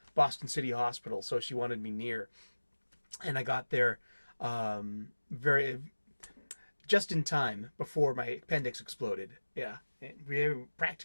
Boston City Hospital, so she wanted me near, and I got there very just in time before my appendix exploded. Yeah, we have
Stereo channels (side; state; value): both; inverted; correlation -1.00